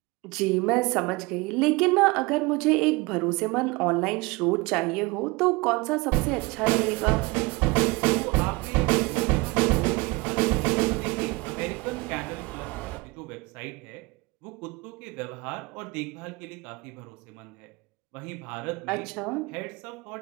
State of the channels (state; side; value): quieter; left; 24.6 dB